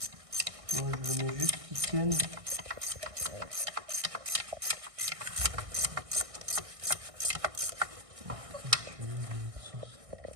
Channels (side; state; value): left; late; 1.6 ms